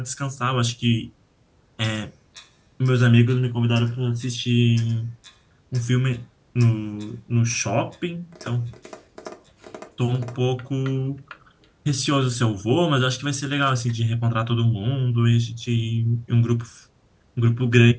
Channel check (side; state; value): both; identical; correlation 1.00